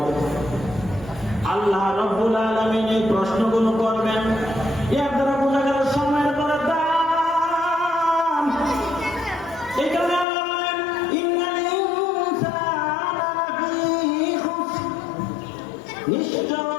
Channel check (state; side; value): drops out; right; at 10.2 s